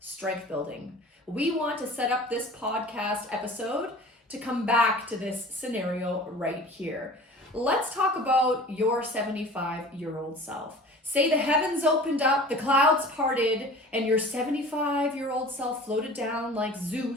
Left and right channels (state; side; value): normal; both; correlation 0.42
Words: building. We want to set up this podcast episode to come back to this scenario right here. Let's talk about your 75-year-old self. Say the heavens opened up, the clouds parted, and your 75-year-old self floated down like